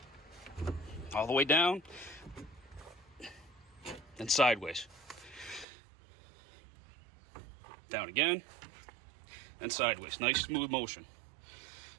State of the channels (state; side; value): drops out; left; at 5.7 s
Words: all the way down and sideways. Down again and sideways. Nice smooth motion.